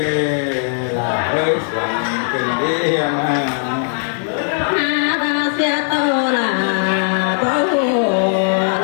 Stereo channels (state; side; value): silent; right; digital silence